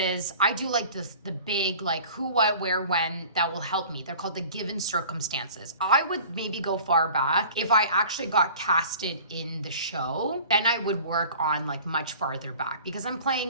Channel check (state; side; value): inverted; both; correlation -0.44